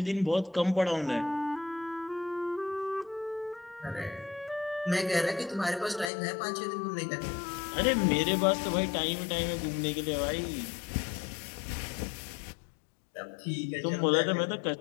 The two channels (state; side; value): drops out; right; at 6.1 s